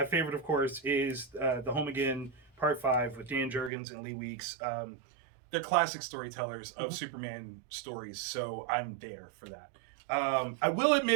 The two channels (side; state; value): left; drops out; at 3.7 s